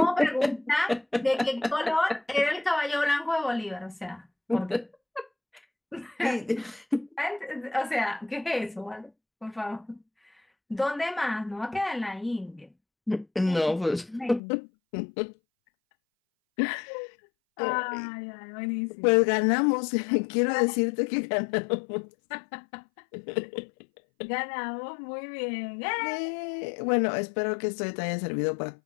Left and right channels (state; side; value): drops out; right; at 14.4 s